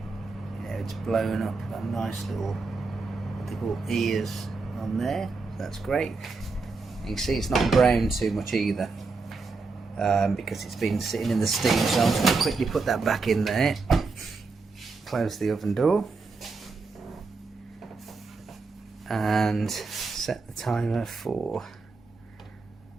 Yeah, it's blown up. Got nice little, what they call ears on there. So that's great. You can see it's not browned too much either, because it's been sitting in the steam. So I'm just going to quickly put that back in there. Close the oven door and set the timer for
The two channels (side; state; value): left; quieter; 4.1 dB